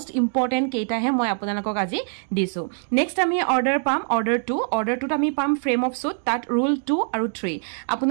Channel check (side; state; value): left; silent; 61 dB below the other